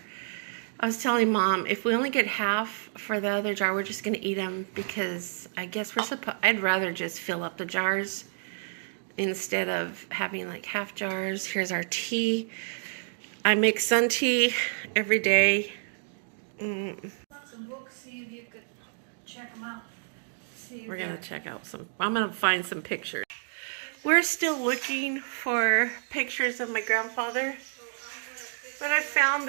I was telling Mom, if we only get half for the other jar, we're just gonna eat them because I guess we're supposed. I'd rather just fill up the jars instead of having like half jars. Here's our tea. I make sun tea every day. Some books, see if you could check them out. We're going to check out some. I'm going to find some pictures. We're still looking for pictures of my grandfather. But I found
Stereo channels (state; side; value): silent; left; digital silence